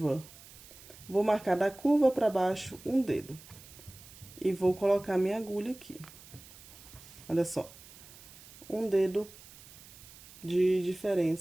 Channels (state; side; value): noise; right; hiss, 20 dB below the sound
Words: Vou marcar da curva pra baixo um dedo. E vou colocar minha agulha aqui. Olha só. Um dedo de